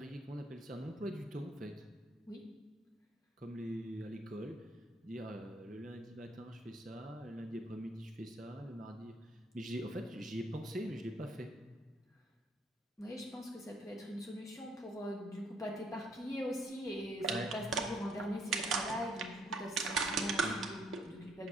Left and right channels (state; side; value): normal; both; correlation 0.67